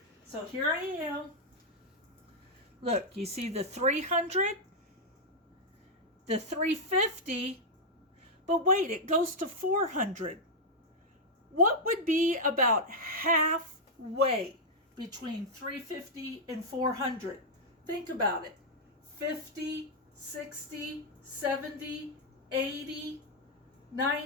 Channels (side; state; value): both; normal; correlation -0.04